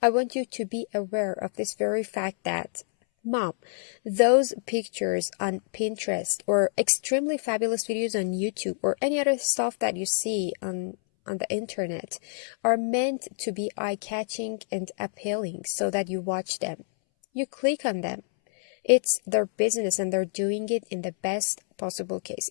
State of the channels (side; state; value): right; silent; 60 dB below the other